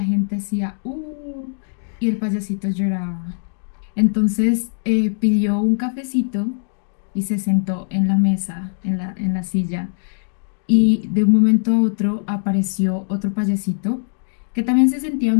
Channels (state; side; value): silent; right; digital silence